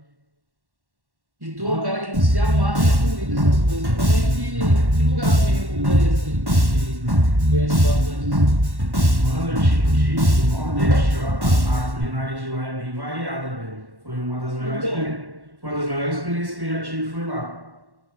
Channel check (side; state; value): left; late; 1.1 ms